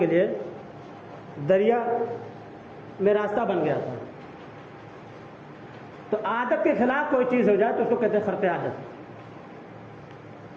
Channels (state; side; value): identical; both; correlation 1.00